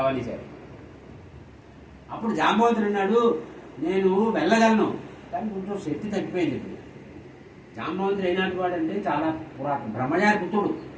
అనేసారు. అప్పుడు జాంబవంతుడు అన్నాడు, నేను వెళ్ళగలను, కానీ కొంచెం శక్తి తగ్గిపోయింది. ఇప్పుడు జాంబవంతుడు అయినట్టు వాడంటే చాలా పురాతన బ్రహ్మగారి పుత్రుడు,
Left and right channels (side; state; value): both; identical; correlation 1.00